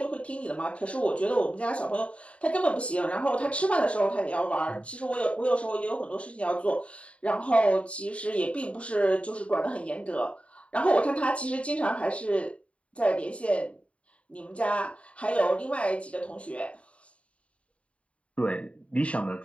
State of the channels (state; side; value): late; right; 0.062 ms